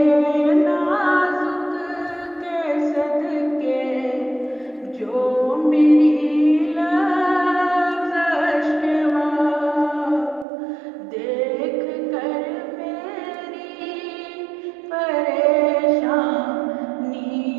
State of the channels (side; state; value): left; drops out; at 10.5 s